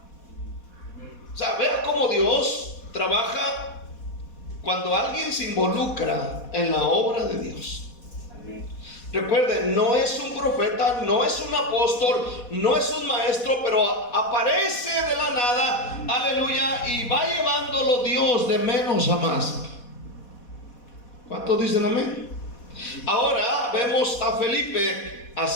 O sea, vea cómo Dios trabaja cuando alguien se involucra en la obra de Dios. Recuerden, no es un profeta, no es un apóstol, no es un maestro, pero aparece de la nada, aleluya, y va llevándolo Dios de menos a más. ¿Cuántos dicen amén? Ahora vemos a Felipe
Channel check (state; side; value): late; right; 4.1 ms